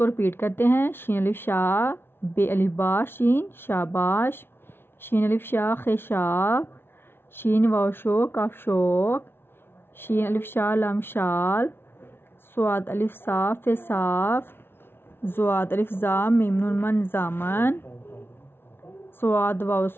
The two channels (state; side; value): late; right; 0.11 ms